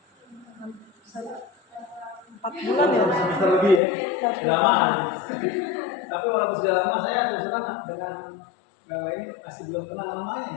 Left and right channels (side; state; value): right; drops out; at 3.8 s